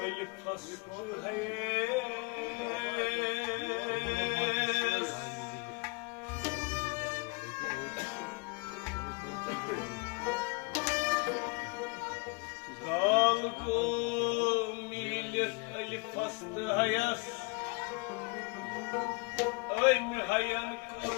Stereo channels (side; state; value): right; quieter; 29.6 dB